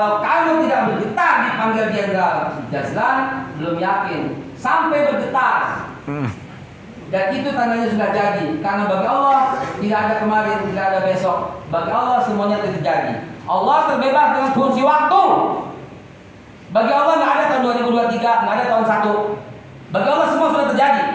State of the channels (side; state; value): both; identical; correlation 1.00